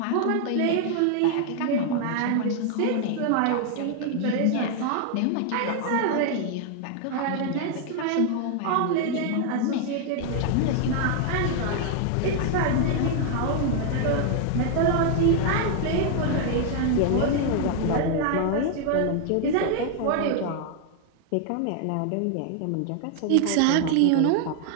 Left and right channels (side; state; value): both; different; correlation 0.00